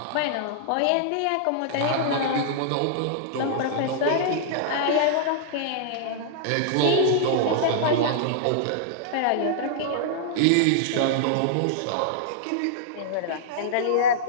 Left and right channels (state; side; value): different; both; correlation -0.01